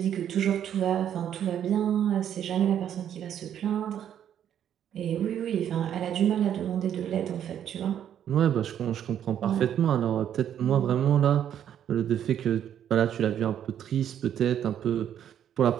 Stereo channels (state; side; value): quieter; left; 9.8 dB